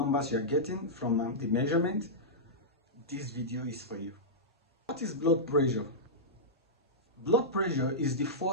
you are getting from the measurement, this video is for you. What is blood pressure? Blood pressure is the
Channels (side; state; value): both; normal; correlation -0.12